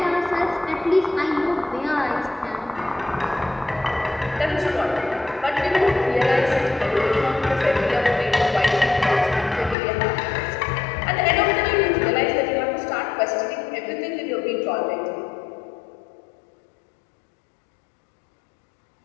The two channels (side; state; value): right; drops out; at 9.8 s